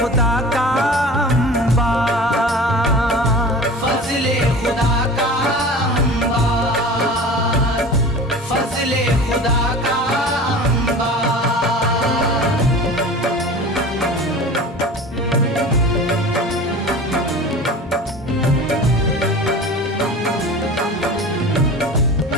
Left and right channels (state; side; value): normal; both; correlation 0.37